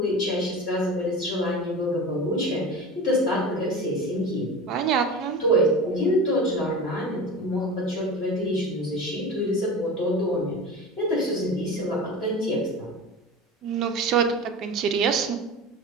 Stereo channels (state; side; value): normal; both; correlation 0.31